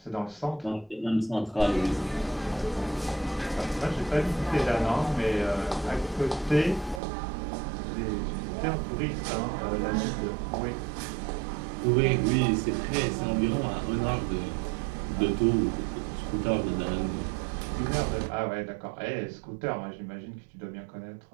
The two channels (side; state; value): left; drops out; at 7.0 s